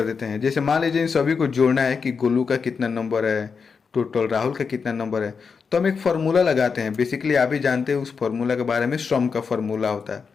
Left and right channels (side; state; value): right; quieter; 5.6 dB